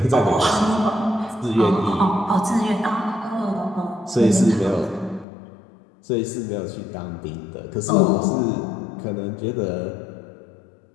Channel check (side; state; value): right; drops out; at 5.2 s